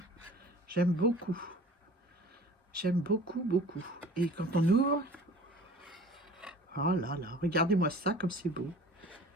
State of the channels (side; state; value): both; normal; correlation 0.44